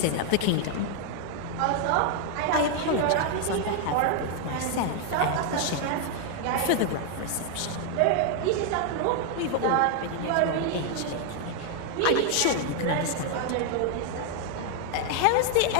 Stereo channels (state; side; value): different; both; correlation 0.00